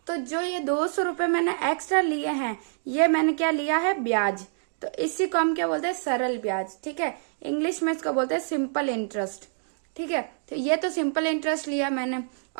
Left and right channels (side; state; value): left; silent; digital silence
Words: तो जो ये 200 रुपए मैंने एक्स्ट्रा लिए हैं, ये मैंने क्या लिया है? ब्याज। तो इसी को हम क्या बोलते हैं? सरल ब्याज। ठीक है, इंग्लिश में इसको बोलते हैं सिंपल इंटरेस्ट। ठीक है, तो ये तो सिंपल इंटरेस्ट लिया मैंने,